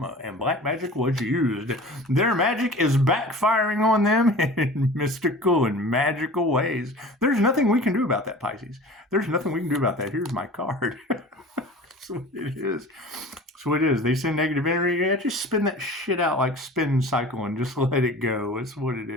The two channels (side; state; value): both; normal; correlation 0.40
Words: and black magic was used. Their magic is backfiring on them in mystical and magical ways. There's nothing we can do about that, Pisces. There's nothing we can do about that. Here's my card. That's what it is. That's what it is. They send negative energy. Yeah, just spin that shit out like spin cycle and just let it go. That's what it